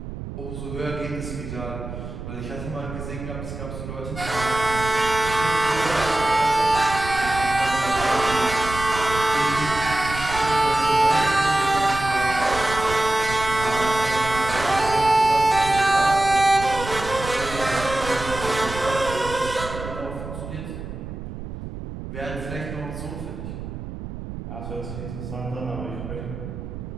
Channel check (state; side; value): noise; right; rumble, 9 dB below the sound